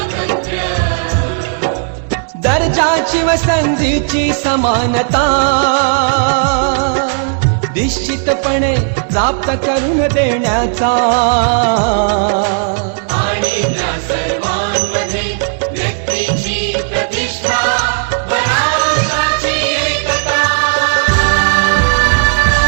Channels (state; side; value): silent; left; 62 dB below the other